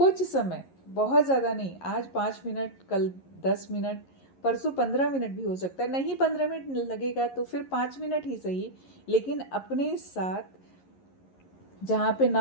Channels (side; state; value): right; late; 11 ms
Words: समय, बहुत ज़्यादा नहीं। आज 5 मिनट, कल 10 मिनट, परसों 15 मिनट भी हो सकता है। नहीं 15 मिनट लगेगा तो फिर 5 मिनट ही सही, लेकिन अपने साथ, जहाँ पे